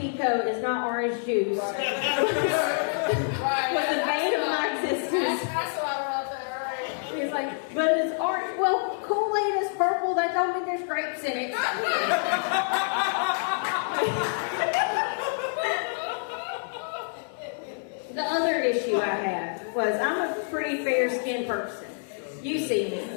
is not orange juice was the bane of my existence. He's like, "But it's orange." Well, Kool-Aid is purple. That don't mean there's grapes in it. The other issue I had was I'm a pretty fair-skinned person. You see me.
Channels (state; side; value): silent; right; digital silence